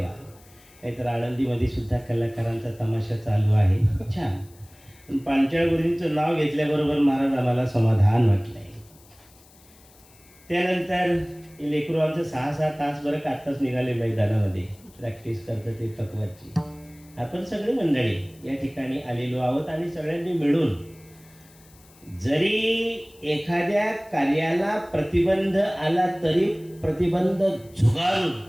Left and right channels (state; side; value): noise; left; hiss, 27 dB below the sound